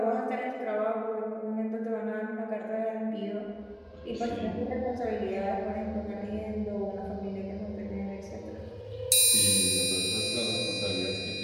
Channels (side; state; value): both; identical; correlation 1.00